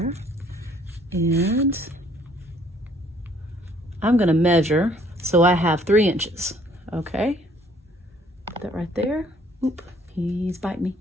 And I'm going to measure so I have 3 inches. Okay. Put that right there. Oop, he's biting me.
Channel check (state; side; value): normal; both; correlation 0.61